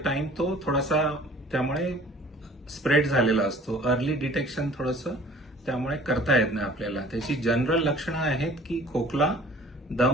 टाइम तो थोडासा त्यामुळे स्प्रेड झालेला असतो. अर्ली डिटेक्शन थोडंसं त्यामुळे करता येत नाही आपल्याला. त्याची जनरल लक्षणं आहेत की खोकला,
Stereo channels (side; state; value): both; normal; correlation 0.50